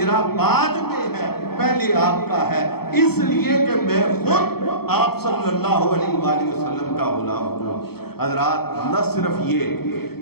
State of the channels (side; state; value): right; late; 0.96 ms